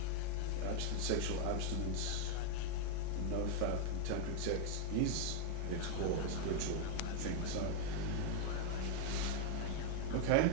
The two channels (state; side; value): different; both; correlation 0.00